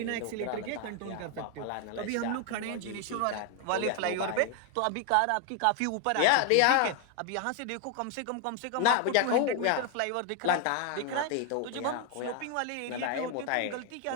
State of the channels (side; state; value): both; different; correlation 0.01